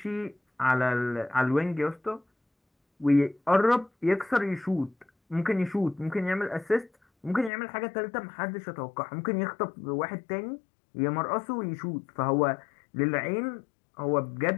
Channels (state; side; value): drops out; right; at 7.5 s